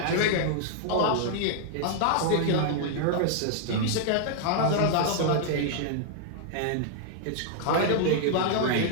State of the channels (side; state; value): both; different; correlation -0.01